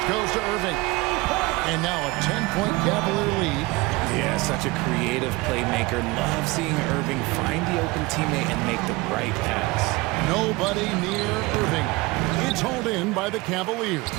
goes to Irving. And now a 10-point Cavalier lead. Yeah, such a creative playmaker. Love seeing Irving find the open teammate and make the right pass. Nobody near Irving. It's hauled in by the Cavaliers.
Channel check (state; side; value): quieter; left; 22.8 dB